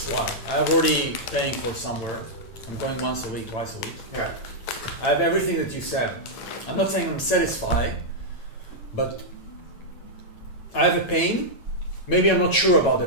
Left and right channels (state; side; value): late; right; 8.9 ms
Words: Why? I'm already paying for somewhere. I'm going once a week, twice a week. Yeah. I have everything that you said. I'm not saying I'm satisfied, but I have a pain. Maybe I'm not sure about the